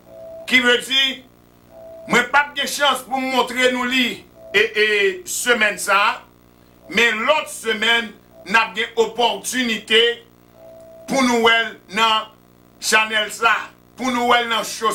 Qui veut dire, moi pas de chance pour montrer nous li et semaine ça, mais l'autre semaine, n'a pas opportunité pour nous dans Chanel ça, pour nous dans show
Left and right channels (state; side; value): identical; both; correlation 1.00